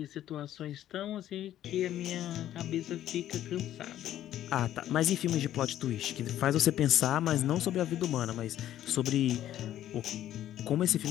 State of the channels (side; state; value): right; quieter; 12.2 dB